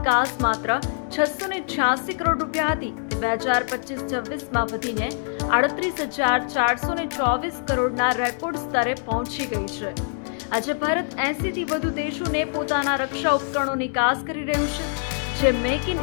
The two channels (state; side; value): silent; right; 62 dB below the other